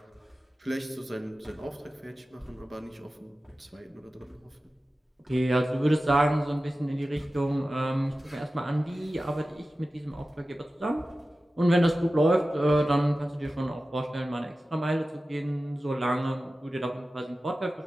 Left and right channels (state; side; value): normal; both; correlation 0.95